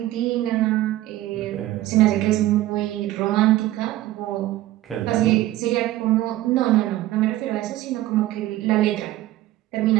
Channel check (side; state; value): left; quieter; 15.5 dB